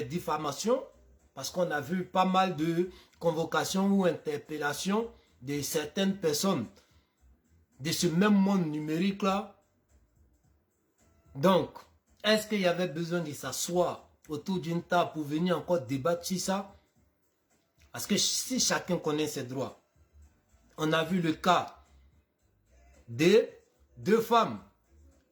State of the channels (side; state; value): both; identical; correlation 1.00